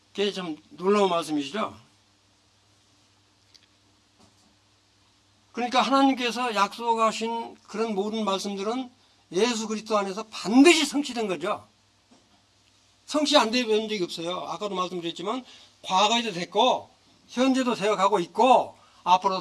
그게 참 놀라운 말씀이시죠? 그러니까 하나님께서 약속하신 그런 모든 말씀들은 예수 그리스도 안에서 반드시 성취된 거죠. 성취 안 된 적이 없어요. 아까도 말씀드렸지만 과거에도 됐고 현재도 되어가고 있고 앞으로도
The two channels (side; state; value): both; identical; correlation 1.00